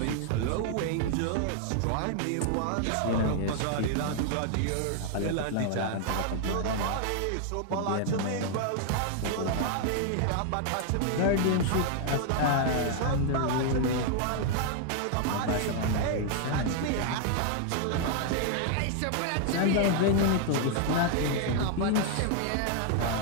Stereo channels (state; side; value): different; both; correlation 0.00